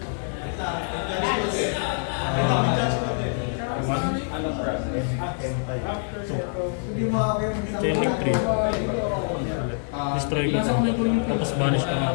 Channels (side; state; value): right; silent; 62 dB below the other